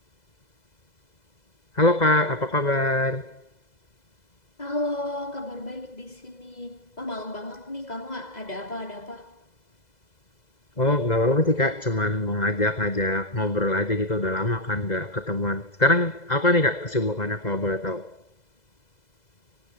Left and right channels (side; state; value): right; late; 2.0 ms